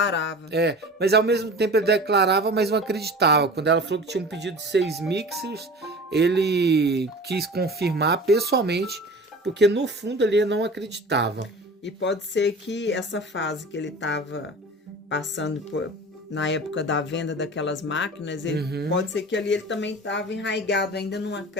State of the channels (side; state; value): both; normal; correlation 0.38